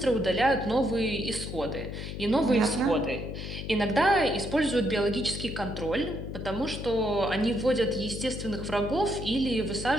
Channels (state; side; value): noise; left; hum, 7 dB below the sound